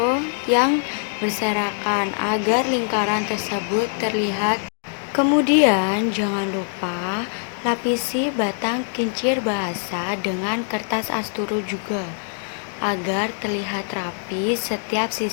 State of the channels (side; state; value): right; silent; 64 dB below the other